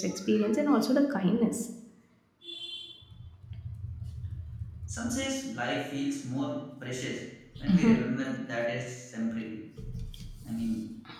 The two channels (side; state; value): both; identical; correlation 1.00